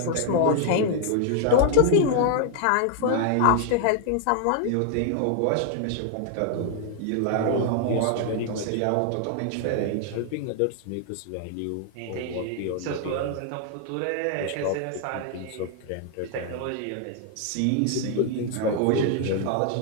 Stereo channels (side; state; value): both; different; correlation 0.00